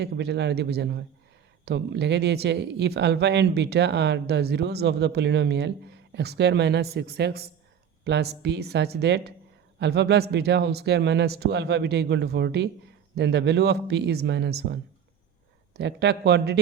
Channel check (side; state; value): left; quieter; 8.3 dB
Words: ক্যাপিটাল আর দিয়ে বোঝানো হয়। তো লিখে দিয়েছে if alpha and beta are the zeros of the polynomial x square minus 6x plus p such that alpha plus beta whole square minus 2 alpha beta equal to 40, then the value of p is -1। তো একটা